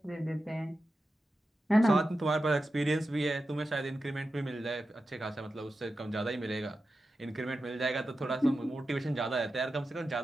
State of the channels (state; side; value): normal; both; correlation 0.91